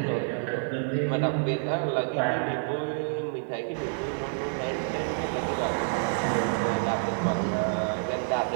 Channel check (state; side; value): silent; left; 59 dB below the other